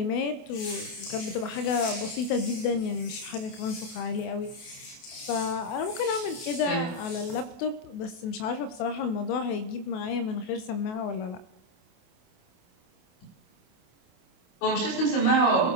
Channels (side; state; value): right; late; 28 ms